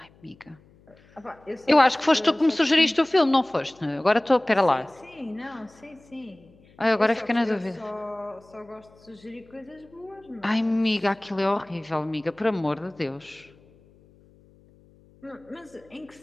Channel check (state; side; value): noise; left; hum, 28 dB below the sound